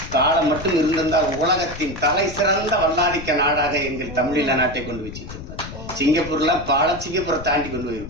காலம் மட்டும் இருந்திருந்தால் உலகத்தின் தலை சிறந்த வல்லாதிக்க நாடாக எங்கள் தமிழீழ நாட்டை கொண்டு வச்சிருப்பார். சிங்கப்பூர்லாம் சிங்கப்பூரை தாண்டி கொண்டு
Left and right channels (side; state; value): left; noise; rumble, 11 dB below the sound